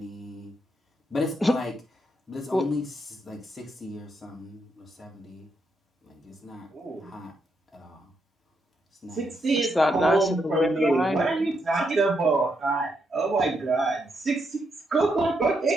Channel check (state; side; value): normal; both; correlation 0.79